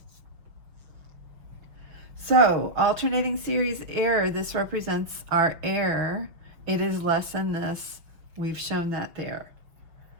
So, alternating series error, this represents our error. It is less than this. We've shown that there.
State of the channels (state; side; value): late; left; 5.9 ms